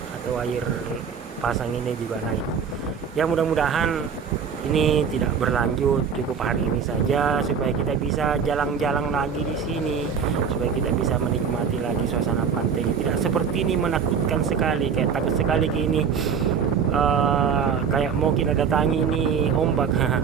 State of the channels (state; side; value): quieter; left; 6.7 dB